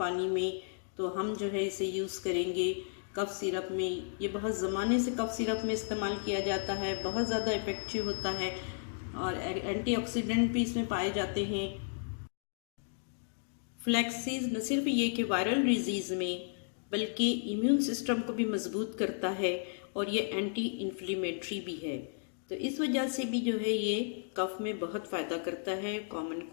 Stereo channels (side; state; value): right; silent; digital silence